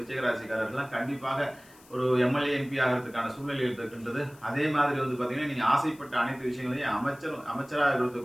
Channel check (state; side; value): noise; left; hiss, 25 dB below the sound